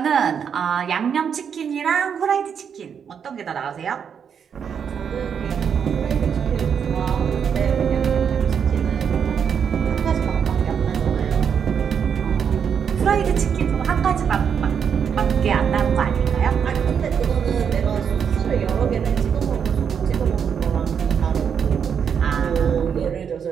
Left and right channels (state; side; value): quieter; left; 7.3 dB